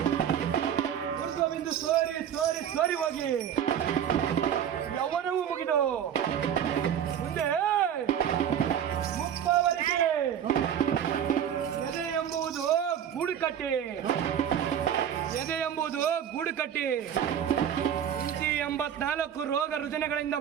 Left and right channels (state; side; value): quieter; left; 9.3 dB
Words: ಊರ್ಧ್ವಬಿಂದು ಸೋರಿ ಹೋಗಿ ಯೌವನವೂ ಮುಗಿದು ಮುಂದೆ ಮುಪ್ಪವರೆಗೆ ಎದೆ ಎಂಬುದು ಗೂಡು ಕಟ್ಟಿ 84 ರೋಗ ರುಜಿನಗಳಿಂದ